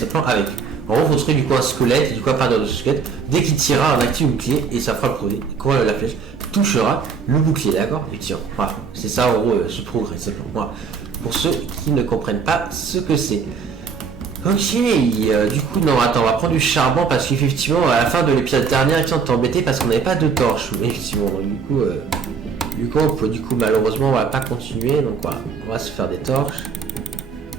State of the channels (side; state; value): left; quieter; 5.7 dB